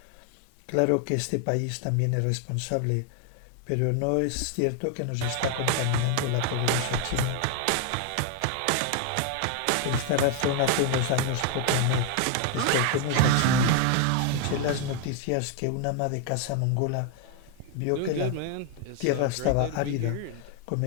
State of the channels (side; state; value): both; different; correlation 0.00